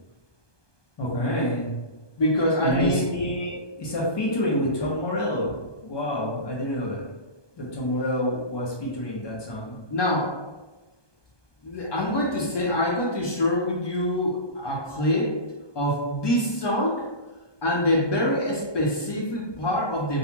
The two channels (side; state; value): right; late; 1.2 ms